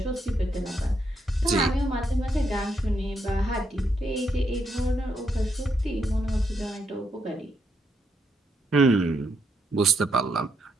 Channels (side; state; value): both; normal; correlation 0.78